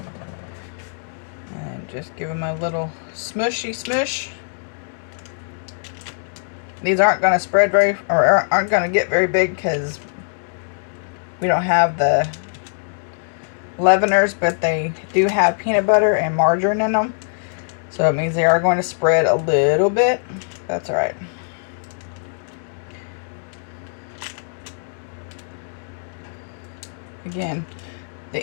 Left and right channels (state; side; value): silent; right; digital silence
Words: And just give them a little smushy smush. These aren't going to spread very, or aren't going to get very big because we don't have the leaveners, but they do have peanut butter and margarine in them. So it means they are going to spread a little bit. That's all right. Again, the